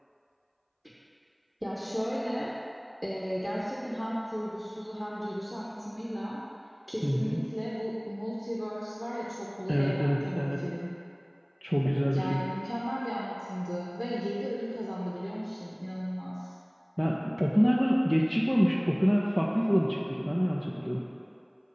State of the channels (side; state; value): both; identical; correlation 1.00